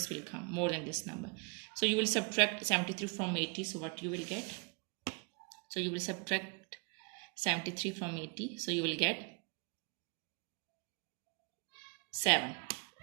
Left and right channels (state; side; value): quieter; left; 33.6 dB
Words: will come more than this number. So you will subtract 73 from 80. So what you will get? So you will subtract 73 from 80. So you will get 7.